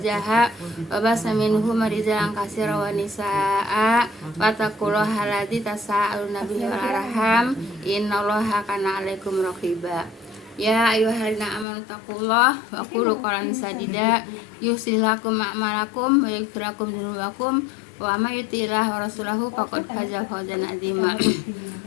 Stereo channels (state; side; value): drops out; right; at 11.7 s